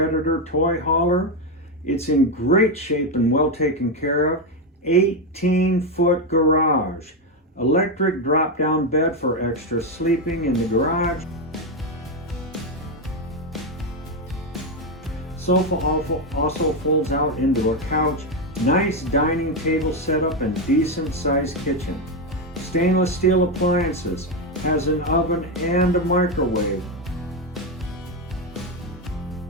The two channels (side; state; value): both; normal; correlation 0.08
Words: toy hauler. It's in great shape and well taken care of. 18-foot garage. Electric drop-down bed for extra sleeping in the garage. Sofa also folds out into a couch. Nice dining table setup and decent sized kitchen. Stainless steel appliances, has an oven and a microwave.